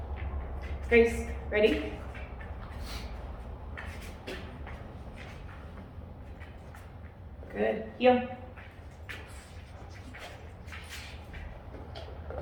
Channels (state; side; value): identical; both; correlation 1.00